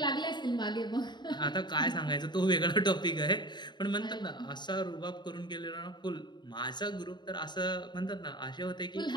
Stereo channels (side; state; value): right; late; 0.21 ms